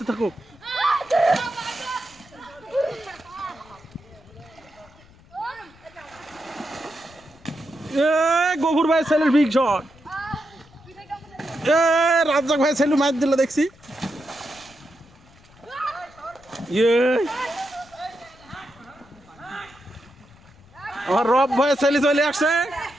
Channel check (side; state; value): left; noise; rumble, 26 dB below the sound